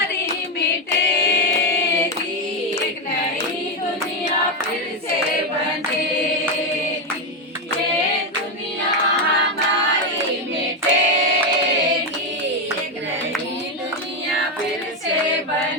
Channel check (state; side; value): normal; both; correlation 0.07